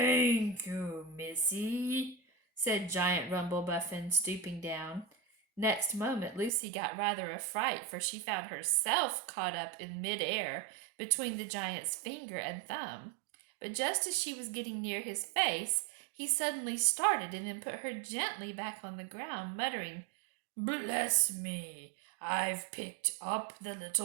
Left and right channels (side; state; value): left; drops out; at 6.5 s